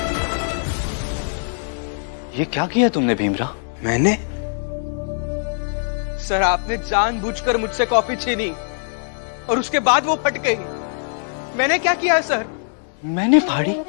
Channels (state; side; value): silent; right; digital silence